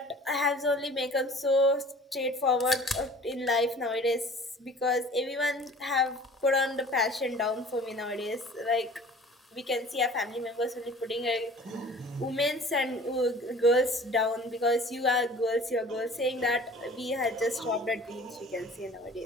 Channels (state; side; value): normal; both; correlation 0.46